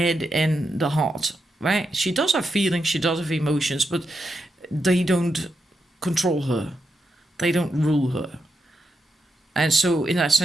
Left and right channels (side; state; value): both; normal; correlation 0.85